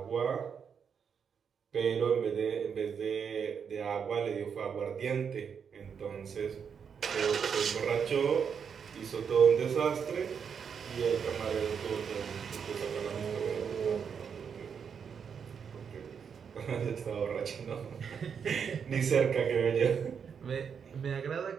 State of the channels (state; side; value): quieter; left; 6.9 dB